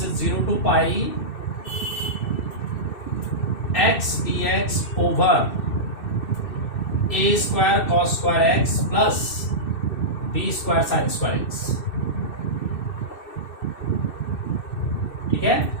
is 0 to pi x dx over a square cos square x plus b square sin square x. ठीक है,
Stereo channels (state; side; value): late; right; 2.6 ms